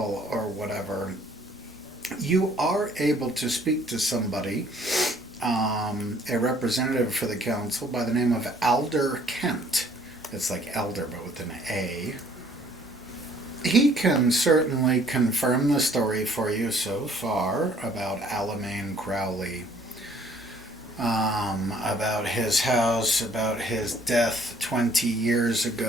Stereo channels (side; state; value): both; normal; correlation 0.59